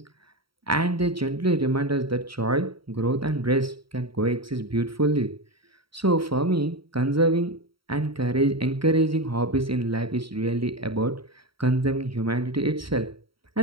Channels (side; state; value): left; late; 0.75 ms